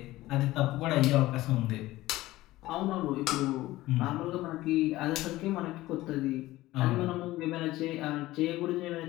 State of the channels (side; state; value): right; quieter; 17.2 dB